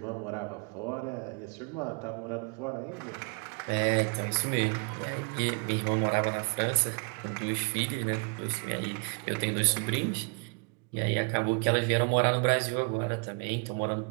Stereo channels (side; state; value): left; quieter; 36.2 dB